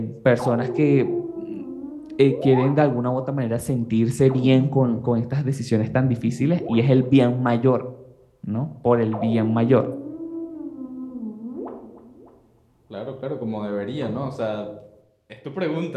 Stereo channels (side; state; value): both; identical; correlation 1.00